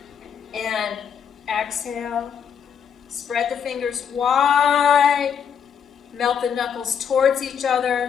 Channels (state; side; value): quieter; right; 7.6 dB